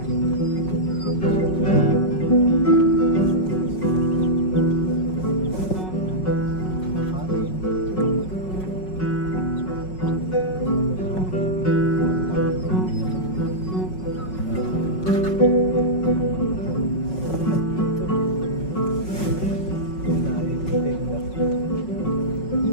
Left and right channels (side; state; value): right; late; 5.4 ms